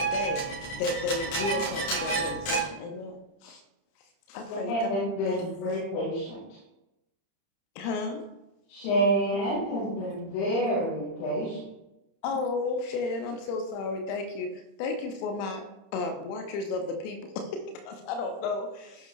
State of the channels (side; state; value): right; late; 31 ms